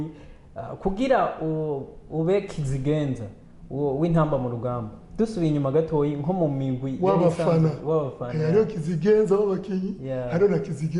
kugira ube kizigenza w'intamba mu rugamba. Dusubiye inyuma gatoyi nko mu migwi w'abafana hariho kizigenza w'abakinyi, hariho na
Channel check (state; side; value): identical; both; correlation 1.00